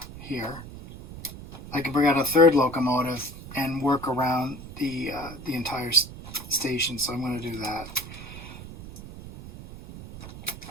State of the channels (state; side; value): noise; right; rumble, 13 dB below the sound